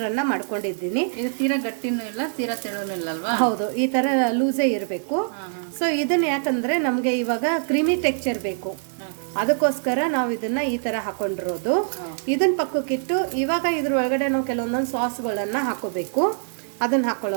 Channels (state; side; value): silent; left; digital silence